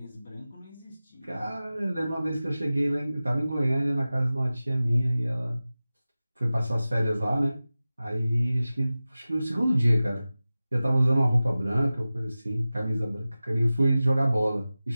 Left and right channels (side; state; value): both; inverted; correlation -0.96